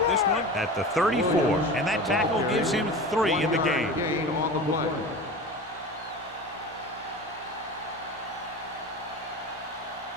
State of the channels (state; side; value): normal; both; correlation 0.32